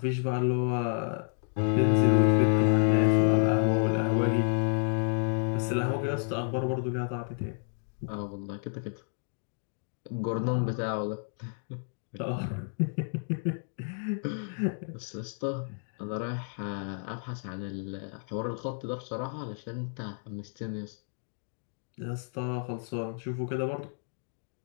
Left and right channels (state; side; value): silent; right; digital silence